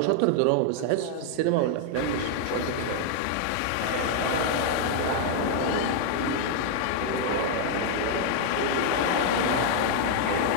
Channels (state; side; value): different; both; correlation 0.00